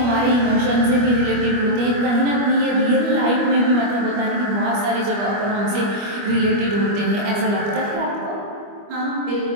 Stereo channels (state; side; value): late; left; 25 ms